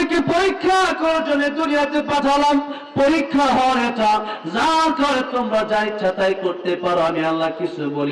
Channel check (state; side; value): identical; both; correlation 1.00